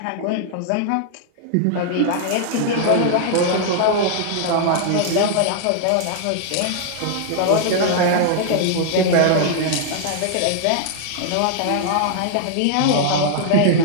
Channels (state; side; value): different; both; correlation -0.01